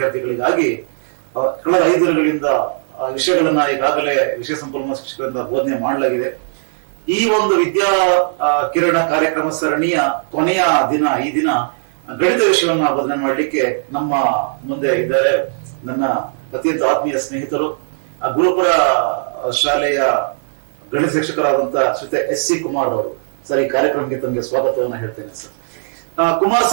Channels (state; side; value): silent; left; 68 dB below the other